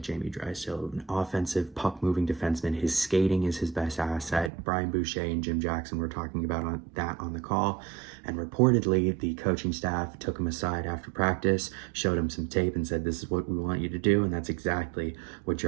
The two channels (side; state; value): left; drops out; at 4.5 s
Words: Jamie Drysdale, an offensive puck-moving defenseman. His skating is his best asset. Brian Boucher and Jim Jackson were talking about that on the call, and reportedly the coaching staff took him aside after practice, showed him some tape and said, this is what we want you to do, and that's exactly what